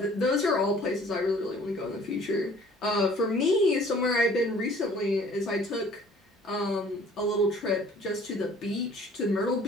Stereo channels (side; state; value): both; normal; correlation 0.53